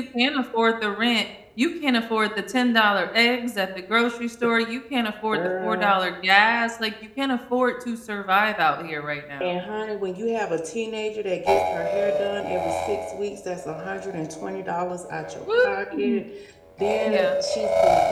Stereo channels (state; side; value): identical; both; correlation 1.00